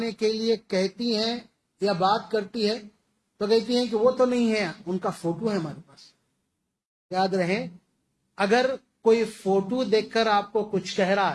کے لیے کہتی ہیں یا بات کرتی ہے تو کہتی ہیں کہ وہ تو نہیں ہے، ان کا فوٹو ہے ہمارے پاس۔ یاد رہے، اگر کوئی فوٹو دیکھ کر آپ کو کچھ کہہ رہا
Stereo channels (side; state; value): both; identical; correlation 1.00